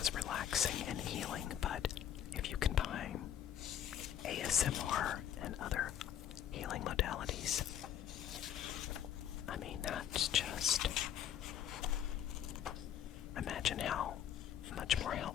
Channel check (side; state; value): right; quieter; 10.0 dB